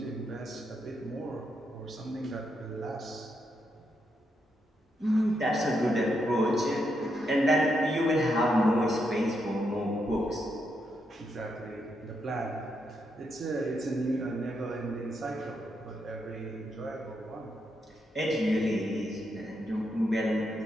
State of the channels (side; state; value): both; normal; correlation 0.81